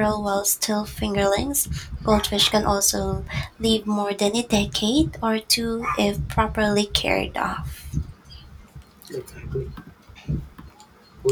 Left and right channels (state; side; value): identical; both; correlation 1.00